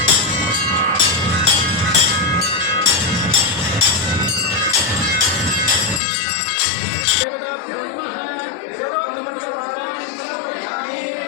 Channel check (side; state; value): right; drops out; at 6.0 s